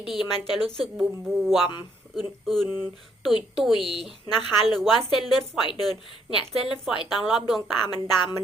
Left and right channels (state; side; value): normal; both; correlation 0.70